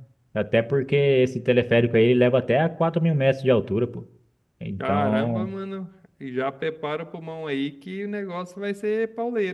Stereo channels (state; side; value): identical; both; correlation 1.00